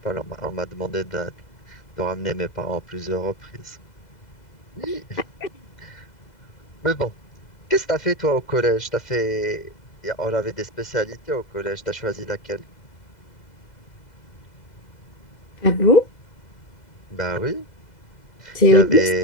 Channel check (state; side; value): late; right; 2.0 ms